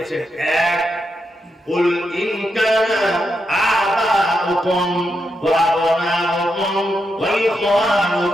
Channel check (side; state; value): both; normal; correlation 0.84